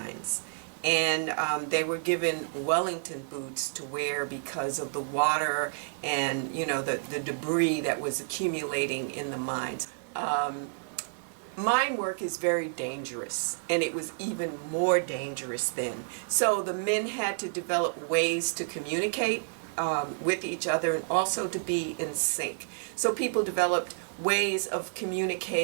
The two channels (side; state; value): left; silent; digital silence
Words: And they were given Wellington boots to wear because of the water and, you know, the debris that was accumulating in the mines. Mine work is very dangerous, and it was even more dangerous then. So the men had to develop ways to communicate with each other and also to be in sync. So people developed ways of